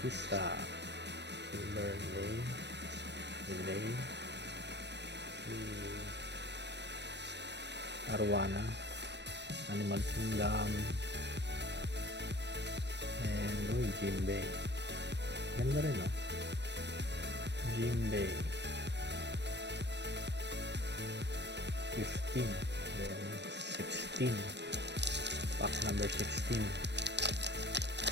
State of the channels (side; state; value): left; late; 0.50 ms